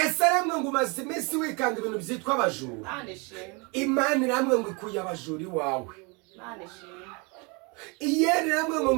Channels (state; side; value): quieter; left; 30.3 dB